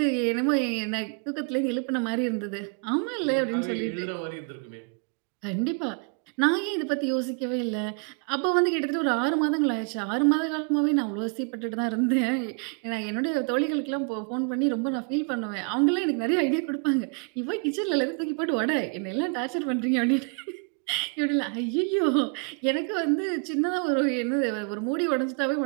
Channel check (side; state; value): left; quieter; 36.7 dB